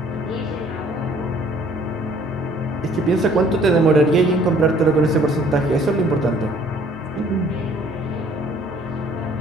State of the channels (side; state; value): both; normal; correlation 0.58